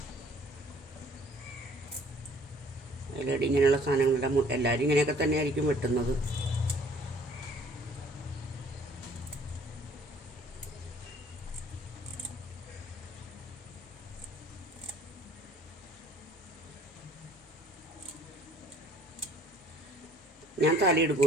അതിലടി ഇങ്ങനെയുള്ള സാധനങ്ങളെല്ലാം എല്ലാവരും ഇങ്ങനെയൊക്കെ തന്നെ ആയിരിക്കും വെട്ടുന്നത്. ഞാൻ തല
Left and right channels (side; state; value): both; normal; correlation 0.56